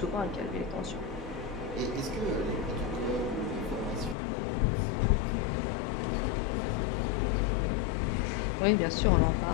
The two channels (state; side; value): drops out; right; at 4.2 s